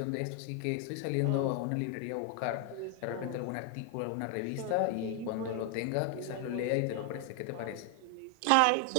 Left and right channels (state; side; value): different; both; correlation 0.00